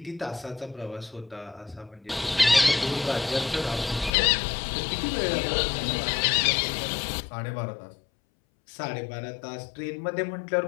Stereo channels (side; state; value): right; drops out; at 4.1 s